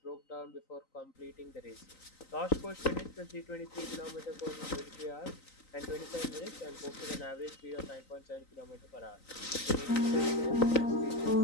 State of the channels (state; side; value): late; right; 3.9 ms